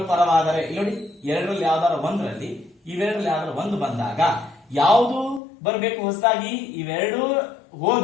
ಪರವಾದರೆ, ಇಲ್ಲಿ ನೋಡಿ, ಎರಡರಲ್ಲಿ ಯಾವ್ದಾರ ಒಂದರಲ್ಲಿ ಇವೆರಡರಲ್ಲಿ ಯಾವ್ದಾರ ಒಂದು ಬಂದಾಗ ಯಾವುದು ಬರಬೇಕು ಹೊಸದಾಗಿ? ಇವೆರಡು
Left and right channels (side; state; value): right; drops out; at 5.4 s